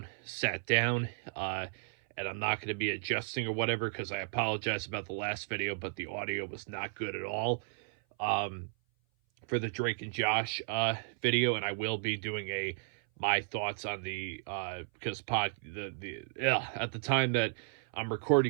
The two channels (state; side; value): silent; left; 55 dB below the other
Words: sat down, and I'm not going to be adjusting or whatever because I apologize about the last video, but the audio was not good at all um, for the Drake and Josh video, and I will be doing my thoughts on the because at the time that I'm